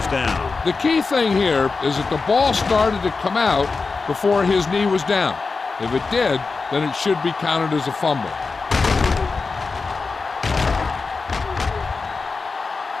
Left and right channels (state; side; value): quieter; right; 4.3 dB